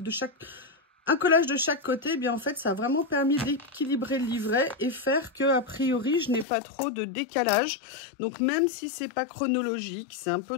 un collage de chaque côté, eh bien en fait, ça a vraiment permis d'équilibrer le livret et faire que, a priori, je n'ai pas trop de décalage. Donc, même si c'est pas chronologique, c'est un peu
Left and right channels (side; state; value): right; drops out; at 6.5 s